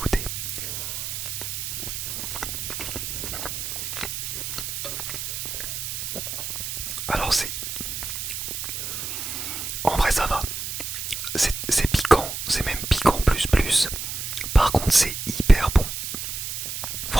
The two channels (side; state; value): right; noise; hiss, 4 dB below the sound